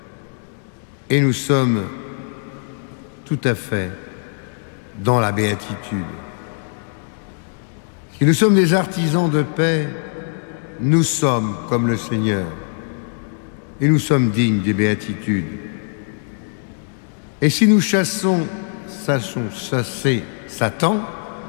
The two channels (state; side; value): silent; right; digital silence